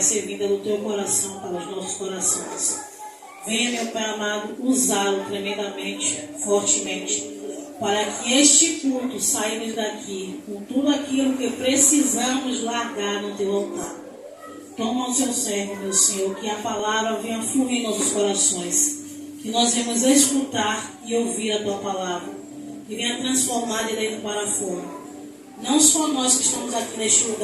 ser vinda do teu coração para os nossos corações, venha, meu Pai amado, usá-lo tremendamente, fortemente, para que este culto saímos daqui com tudo aquilo que precisamos largar no teu altar. Toma o seu servo, meu Senhor, que a palavra venha fluir em nossos corações, que nós venhamos escutar e ouvir a tua palavra, que venha transformar de dentro para fora. Não só nós que estamos aqui neste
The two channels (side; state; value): both; identical; correlation 1.00